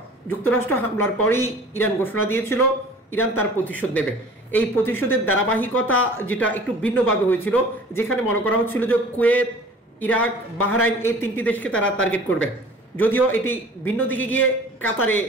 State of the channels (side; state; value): both; normal; correlation 0.46